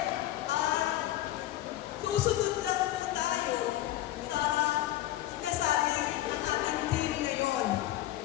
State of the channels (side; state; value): right; quieter; 14.6 dB